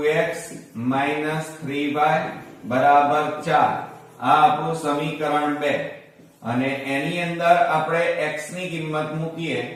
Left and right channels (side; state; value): both; identical; correlation 1.00